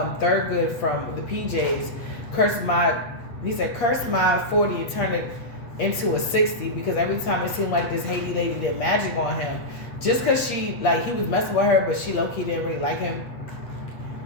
from the PJs. He said, curse my 40 and turn it into a 60, because every time it seemed like this Haiti lady did magic on him, just because he was messing with her, but she low-key didn't really like him.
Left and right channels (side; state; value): right; late; 8.5 ms